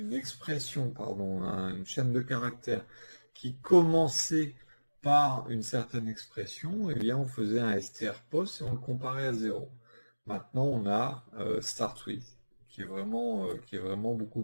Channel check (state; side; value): inverted; both; correlation -1.00